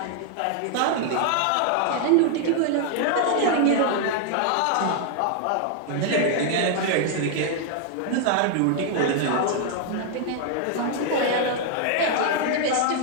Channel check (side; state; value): both; different; correlation 0.00